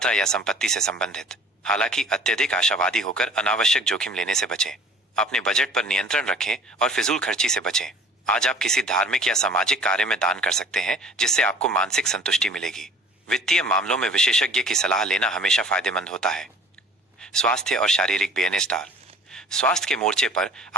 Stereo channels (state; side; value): normal; both; correlation 0.47